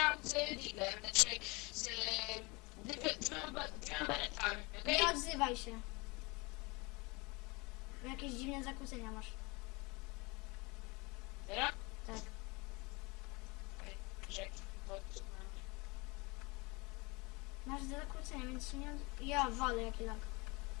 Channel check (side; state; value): right; quieter; 26.4 dB